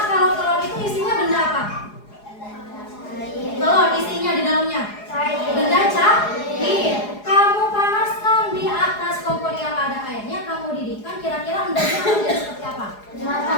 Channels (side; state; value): right; late; 4.8 ms